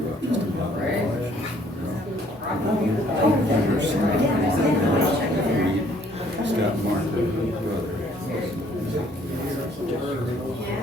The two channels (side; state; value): both; normal; correlation 0.62